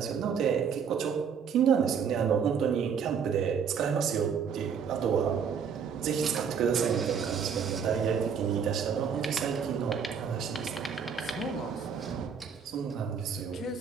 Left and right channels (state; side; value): quieter; left; 6.8 dB